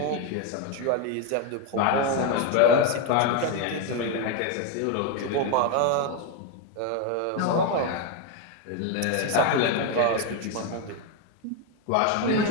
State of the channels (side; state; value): both; different; correlation 0.02